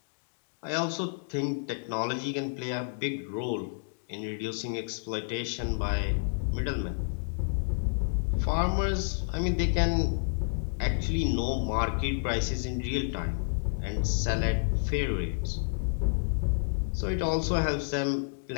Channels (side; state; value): right; silent; digital silence